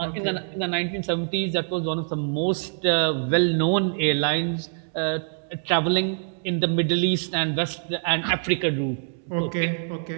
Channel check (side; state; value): left; silent; digital silence